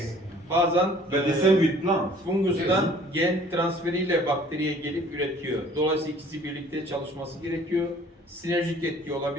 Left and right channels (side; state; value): both; normal; correlation 0.53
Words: Bazen But the same with plants. fungustan gen transferiyle bakteriye gelip üretiyor. Dolayısıyla ikisi birlikte çalışması gerekiyor. Sinerjik etki